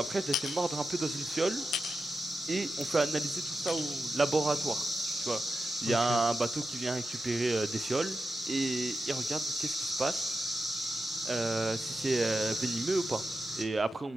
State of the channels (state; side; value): normal; both; correlation 0.90